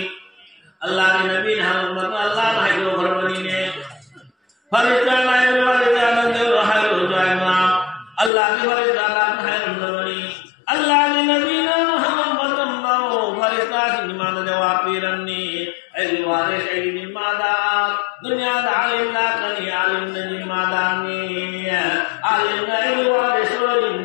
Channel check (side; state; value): right; drops out; at 8.3 s